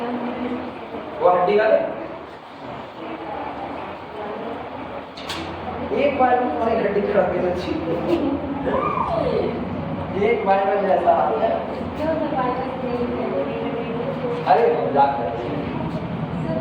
वो हड्डी वाले एक बार में तुम्हारी हड्डी खड़ा के तो ठीक एक बार में जैसा हाल है अरे मजाक कर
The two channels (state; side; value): identical; both; correlation 1.00